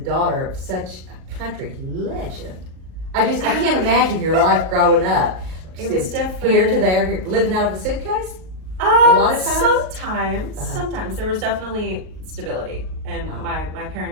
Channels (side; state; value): left; late; 38 ms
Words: of such a country legend? I can't imagine your life growing up. It was Just different. Here to there, living out of a suitcase? lot of times? Sometimes there was definitely stability, and Wow. my